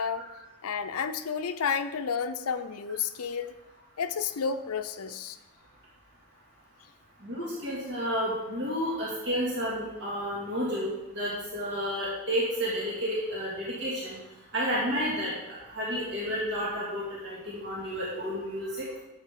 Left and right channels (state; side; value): normal; both; correlation -0.02